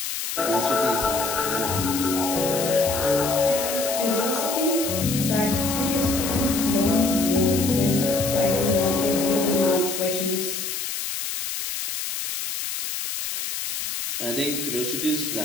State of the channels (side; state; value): left; noise; hiss, 4 dB below the sound